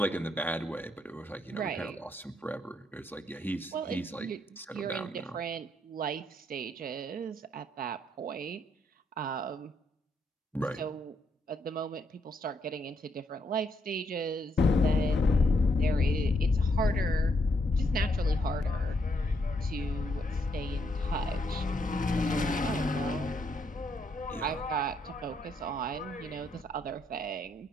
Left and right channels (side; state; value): both; normal; correlation 0.75